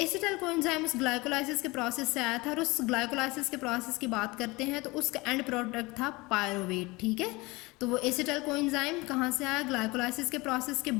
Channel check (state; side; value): quieter; right; 23.2 dB